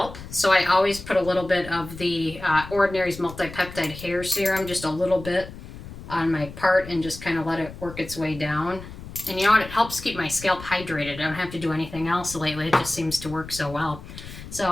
so I always put a little bit of the Ordinary's Multi-Peptide Hair Serum, just a little bit on my part, and just kind of let it work its way down. And you know what? It helps keep my scalp hydrated. I don't have to do anything else lately. It just seems to work so well.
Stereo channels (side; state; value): left; noise; rumble, 14 dB below the sound